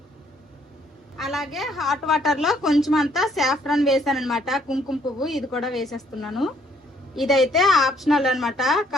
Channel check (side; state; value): both; normal; correlation 0.66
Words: అలాగే హాట్ వాటర్ లో కొంచెం అంతా సాఫ్రాన్ వేసాను అనమాట, కుంకుమ పువ్వు. ఇది కూడా వేసేస్తున్నాను. ఇదైతే ఆప్షనల్ అనమాట,